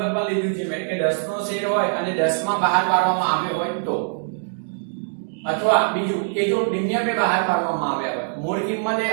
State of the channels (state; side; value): silent; left; digital silence